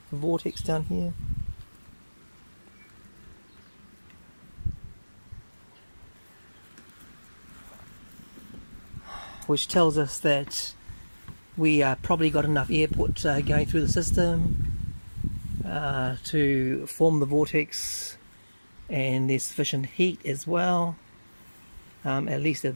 vortex down here. Which tells us that we probably got enough airput going through the system to form the vortex, and there's sufficient heat as well, at least at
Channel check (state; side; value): inverted; both; correlation -1.00